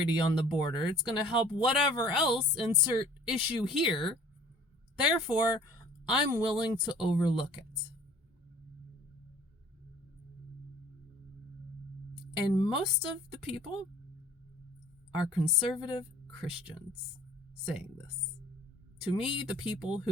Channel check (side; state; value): both; normal; correlation 0.51